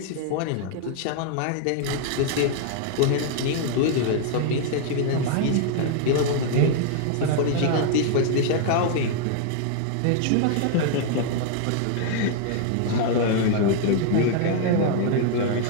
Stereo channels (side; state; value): both; different; correlation -0.01